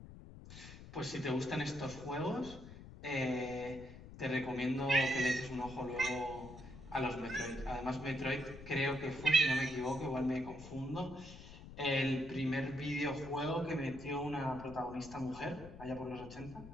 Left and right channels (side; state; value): left; noise; rumble, 15 dB below the sound